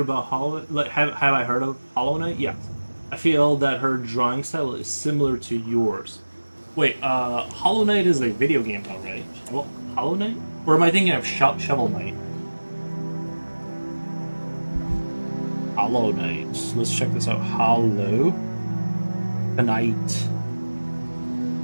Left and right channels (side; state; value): both; inverted; correlation -1.00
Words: about Hollow? Like, have I heard of Hollow Knight? Yeah, I feel that her drawing style is similar to yours. Wait, Hollow Knight is a video game, though, right? Well, Hollow Knight, or am I thinking of Shovel Knight? Hollow Knight. Let's check this out. Hollow Knight.